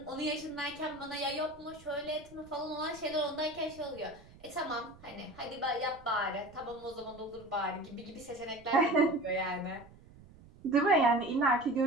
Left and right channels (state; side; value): noise; right; rumble, 22 dB below the sound